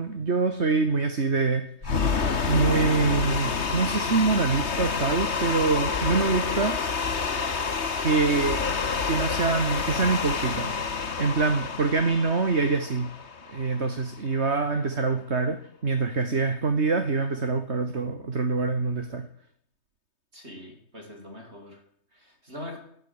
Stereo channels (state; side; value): late; left; 3.2 ms